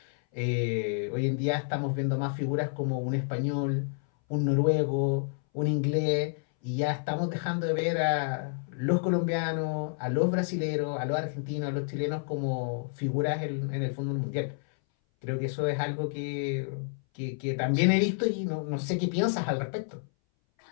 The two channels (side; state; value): right; silent; 58 dB below the other